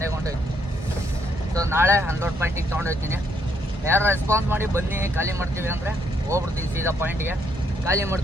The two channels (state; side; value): normal; both; correlation 0.73